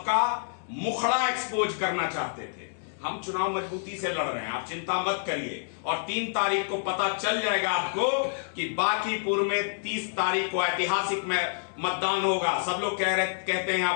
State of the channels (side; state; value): right; silent; digital silence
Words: मुखड़ा एक्सपोज करना चाहते थे। हम चुनाव मजबूती से लड़ रहे हैं, आप चिंता मत करिए। और 3 तारीख को पता चल जाएगा आपको कि बांकीपुर में 30 तारीख को ऐतिहासिक में मतदान होगा। सब लोग कहते हैं यहां